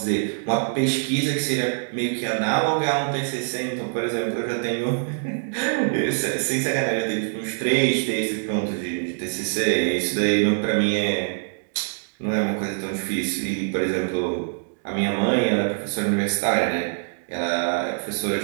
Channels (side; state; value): left; silent; digital silence